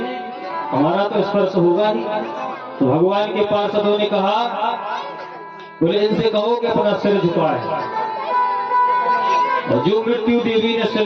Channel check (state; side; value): identical; both; correlation 1.00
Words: हमारा तो स्पर्श होगा ही। तो भगवान के पार्षदों ने कहा, बोले इनसे कहो कि अपना सिर झुकाए। और जो मृत्यु देवी ने